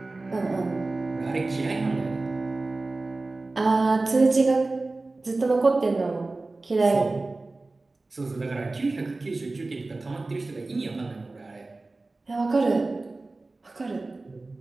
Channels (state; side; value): quieter; left; 3.3 dB